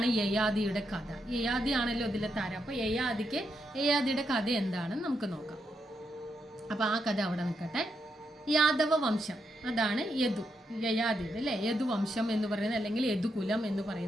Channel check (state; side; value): normal; both; correlation 0.81